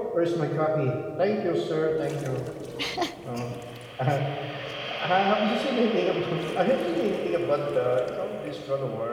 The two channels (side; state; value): both; identical; correlation 1.00